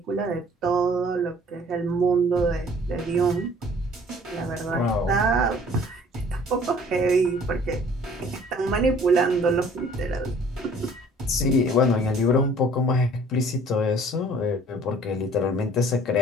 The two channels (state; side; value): normal; both; correlation 0.53